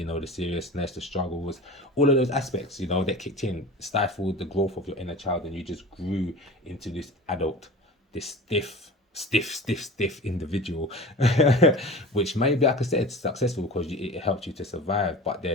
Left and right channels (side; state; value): both; normal; correlation 0.35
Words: know, the seriousness, the struggles, all of those aspects, you know, that kicked in, stifled the growth of your inner child, and you just grew into this adult, this stiff individual, which maybe, like I said, successful because it helped you to survive. But